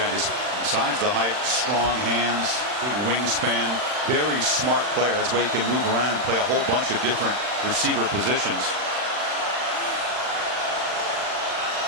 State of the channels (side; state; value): left; late; 40 ms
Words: just besides the height, strong hands, big wingspan, very smart player. That's why he can move around and play a whole bunch of different receiver positions.